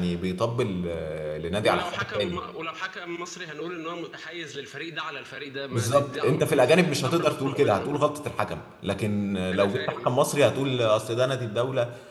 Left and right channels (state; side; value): identical; both; correlation 1.00